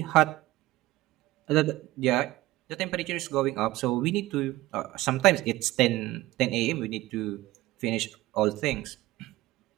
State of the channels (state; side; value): quieter; left; 17.7 dB